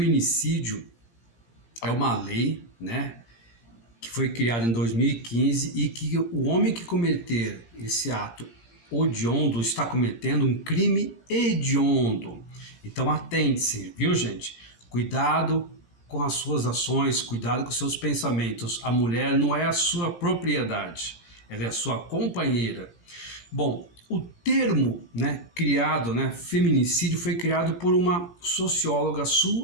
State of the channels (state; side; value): late; right; 17 ms